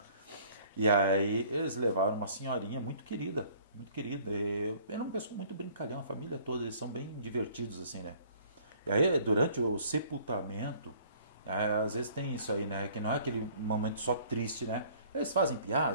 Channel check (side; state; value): both; inverted; correlation -0.56